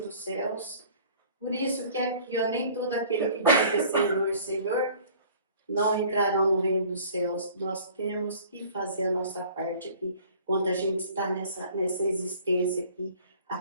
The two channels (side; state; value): both; inverted; correlation -0.50